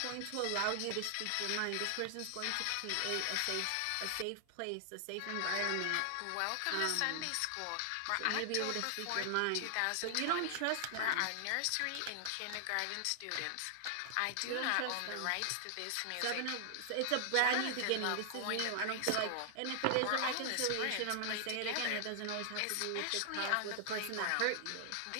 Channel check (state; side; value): different; both; correlation -0.01